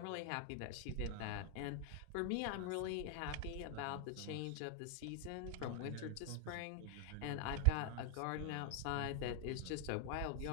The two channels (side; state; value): both; different; correlation 0.00